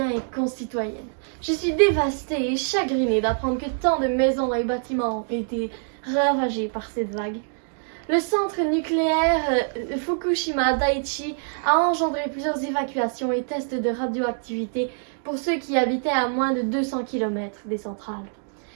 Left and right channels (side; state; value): left; silent; digital silence